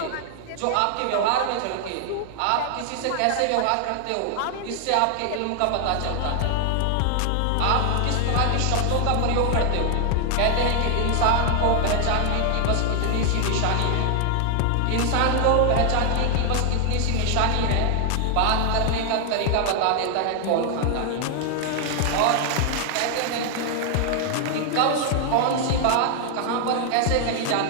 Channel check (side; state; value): both; different; correlation 0.00